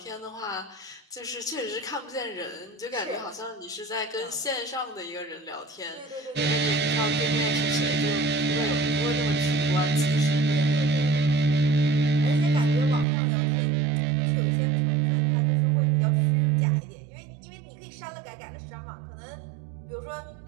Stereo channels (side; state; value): left; drops out; at 13.1 s